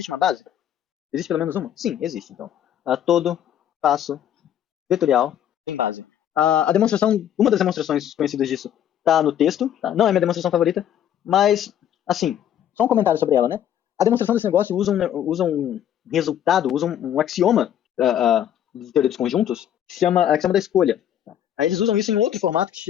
uma base? Existe pelo menos uma? Sim, existe. Então, todo espaço vetorial tem base. Uma das demonstrações conhecidas disso está no texto. Tá? Não é minha demonstração favorita, mas, assim, só um comentário sobre ela, né? A demonstração desse negócio usa um resultado, usa um axioma de teoria dos conjuntos, que se chama axioma da escolha. Aí eles usam isso em outro formato,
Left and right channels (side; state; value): right; quieter; 10.4 dB